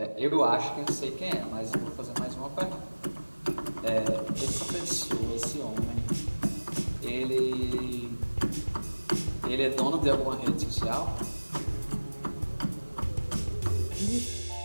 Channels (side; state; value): both; inverted; correlation -1.00